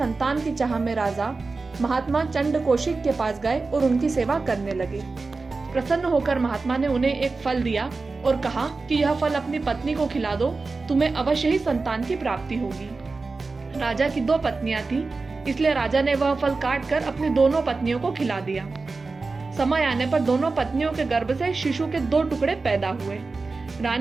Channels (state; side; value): quieter; left; 3.9 dB